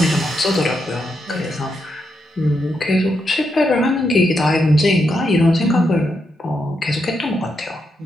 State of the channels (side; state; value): both; normal; correlation 0.82